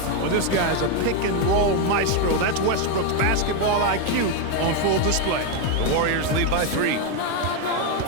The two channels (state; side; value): different; both; correlation 0.02